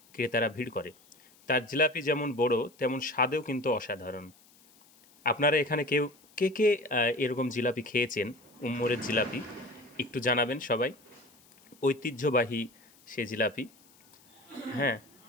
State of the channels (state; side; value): noise; left; hiss, 28 dB below the sound